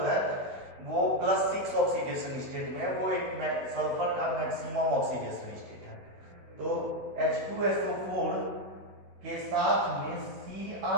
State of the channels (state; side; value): late; left; 15 ms